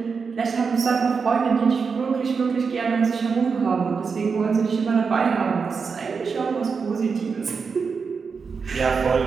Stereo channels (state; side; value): quieter; left; 5.4 dB